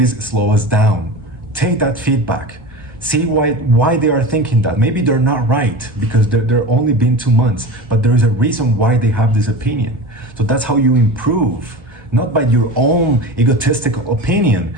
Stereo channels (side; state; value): both; normal; correlation 0.31